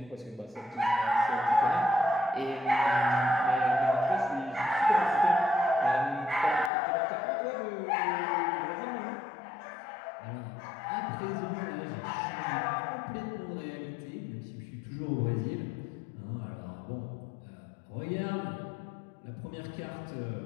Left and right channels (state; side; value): drops out; right; at 6.7 s